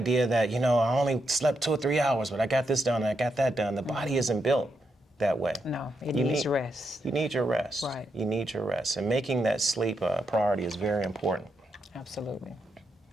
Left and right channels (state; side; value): normal; both; correlation 0.82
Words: that, I only slept 2 or 3 hours, but I got this done and I got that done. The body isn't built that way. No, it needs rest. You need your rest. Right. You need your rest. And making that sleep a priority is very important. Absolutely.